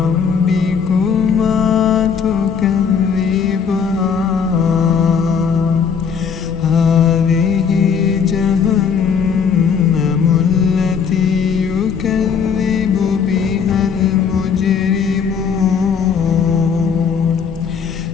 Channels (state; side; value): quieter; right; 6.5 dB